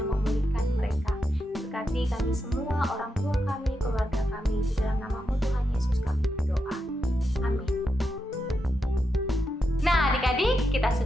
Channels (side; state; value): both; normal; correlation 0.85